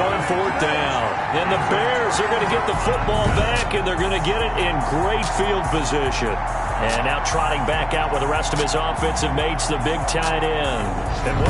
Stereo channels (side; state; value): both; identical; correlation 1.00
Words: 4th down. And the Bears are going to get the football back, and they're going to get it in great field position. And now trotting back out with the rest of his offensive mates, the big tight end. And